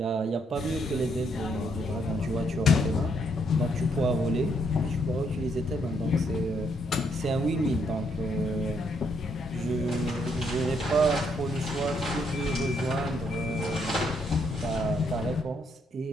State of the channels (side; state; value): both; normal; correlation 0.73